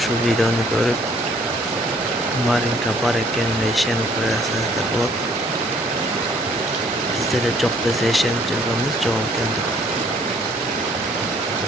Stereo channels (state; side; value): normal; both; correlation 0.61